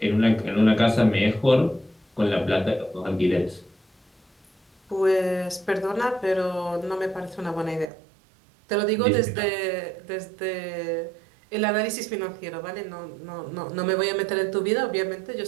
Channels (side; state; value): left; drops out; at 7.9 s